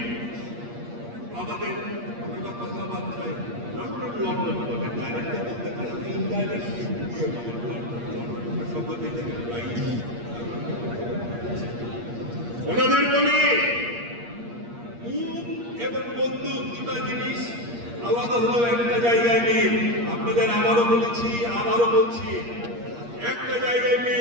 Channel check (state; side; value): late; left; 8.5 ms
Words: আমাদের কথাবার্তায় লন্ডন বলে ডাইরেক্ট বলতে পারেন, ইনডাইরেক্ট ওনাদের বলি মুখ এবং বন্দুক দুটা জিনিস আলাদা হলেও একটা জায়গায় মিল। আপনাদের আবারও বলেছি, আবারও বলছি, একটা জায়গায়